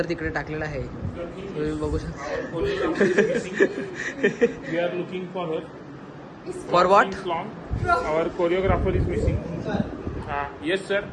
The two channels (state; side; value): identical; both; correlation 1.00